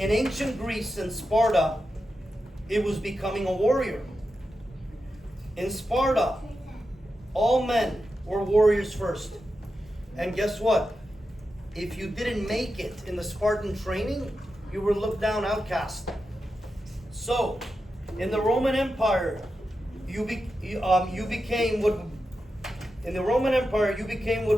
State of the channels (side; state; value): both; normal; correlation 0.90